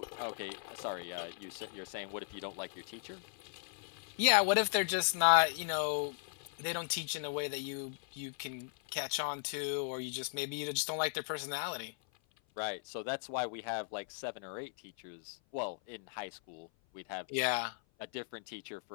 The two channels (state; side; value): silent; right; 53 dB below the other